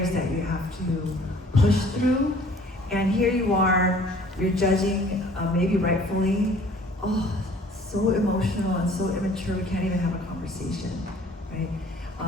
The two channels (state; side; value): normal; both; correlation 0.53